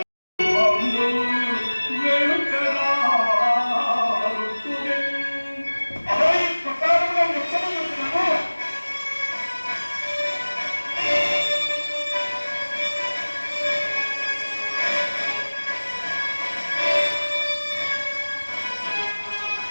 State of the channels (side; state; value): both; inverted; correlation -1.00